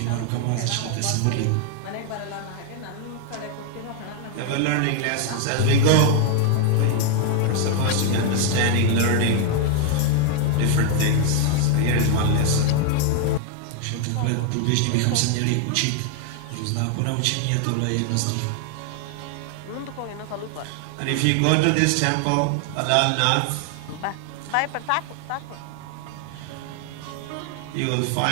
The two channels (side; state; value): both; different; correlation 0.00